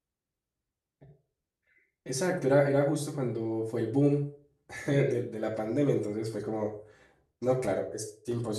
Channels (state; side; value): identical; both; correlation 1.00